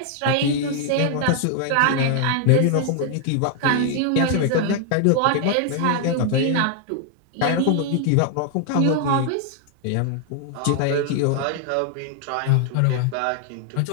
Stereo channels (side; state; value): both; different; correlation 0.00